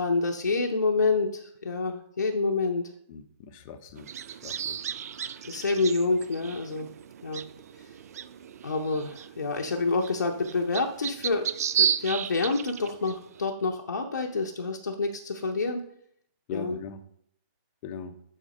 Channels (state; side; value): inverted; both; correlation -0.61